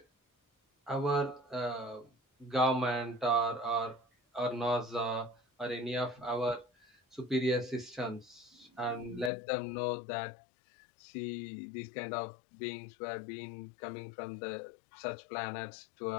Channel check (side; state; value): right; drops out; at 9.3 s